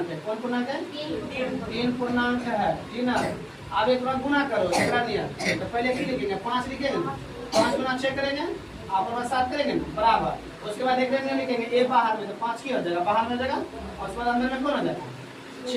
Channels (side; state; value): both; identical; correlation 1.00